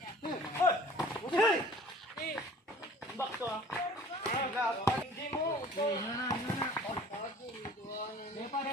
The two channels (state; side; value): normal; both; correlation 0.48